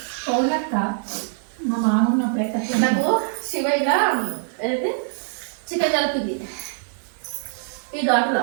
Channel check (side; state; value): left; silent; digital silence